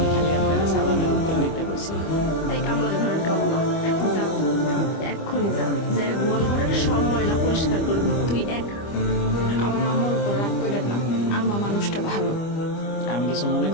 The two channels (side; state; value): right; late; 25 ms